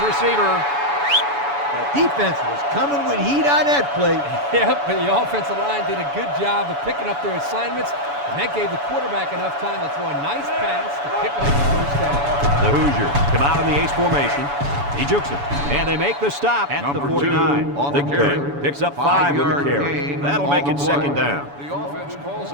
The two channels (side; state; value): left; late; 7.0 ms